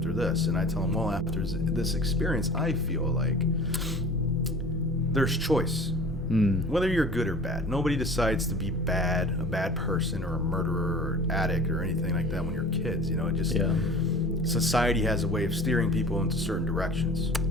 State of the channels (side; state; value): both; normal; correlation 0.42